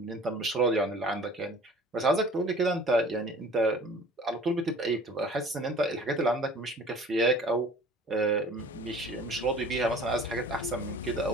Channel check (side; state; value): both; normal; correlation 0.47